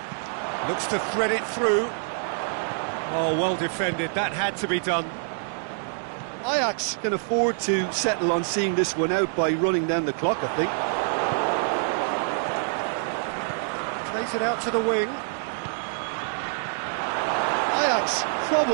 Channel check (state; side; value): silent; left; digital silence